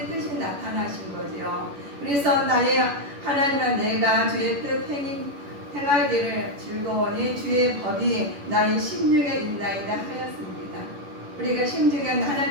뜻이 나타나신 거죠. 그래서 나의 하나님은 내가 주의 뜻 행하기를 즐거우니 주의 법이 나의 심중에 있나이다 하였습니다. 우리가 심중에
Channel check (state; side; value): late; left; 11 ms